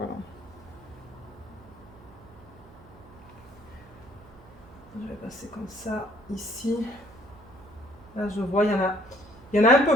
Je vais passer comme ça ici. Là, je vois, il y en a un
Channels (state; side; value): noise; right; hum, 22 dB below the sound